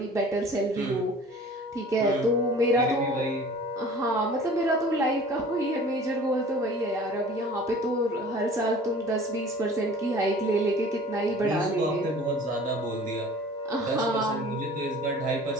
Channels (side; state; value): both; normal; correlation 0.46